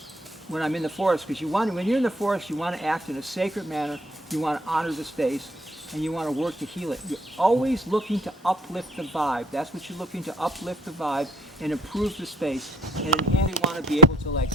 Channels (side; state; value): both; normal; correlation 0.61